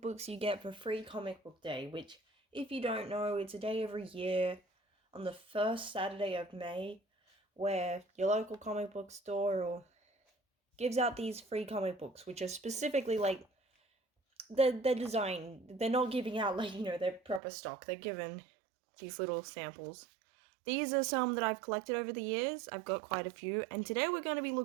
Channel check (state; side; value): drops out; left; at 17.4 s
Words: books you get for free Comic Book Day, which, if you don't know, it's a day every year on the first Saturday of May where your local comic book store gives out these free comic books, which are specifically like they're designed. They're not giving out their proper stock. They're given these little samples. These are some that I've collected over the years. I've got quite a few, and today we're going to be